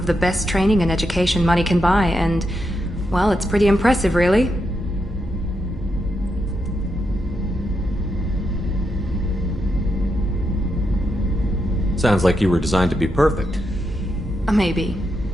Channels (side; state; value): both; normal; correlation 0.83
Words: the best training and education money can buy, and, well, it's pretty impressive, really. Sounds like you were designed to be perfect. Maybe,